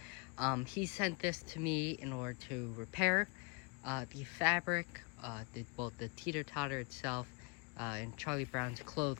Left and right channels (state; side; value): quieter; right; 32.8 dB